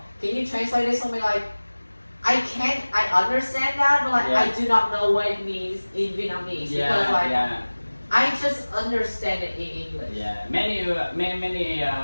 can you translate this for me? Like I understand that, but like I do not know what it means in Vietnamese because I just understand it in English. Many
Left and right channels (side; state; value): both; inverted; correlation -1.00